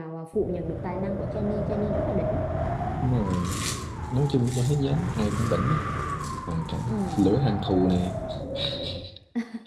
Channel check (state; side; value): identical; both; correlation 1.00